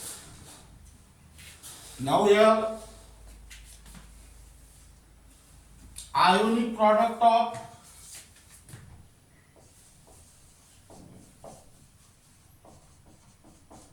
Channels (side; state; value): both; identical; correlation 1.00